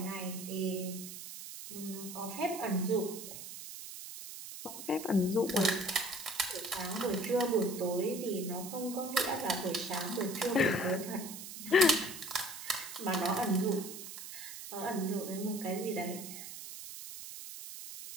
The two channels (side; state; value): right; noise; hiss, 10 dB below the sound